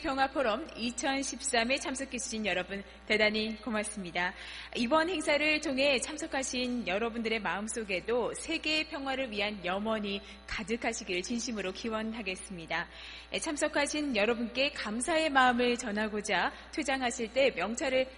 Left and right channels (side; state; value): both; identical; correlation 1.00